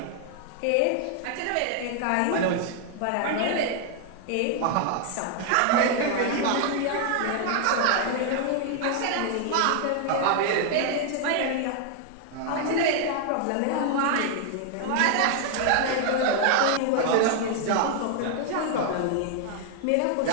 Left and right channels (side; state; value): both; different; correlation 0.00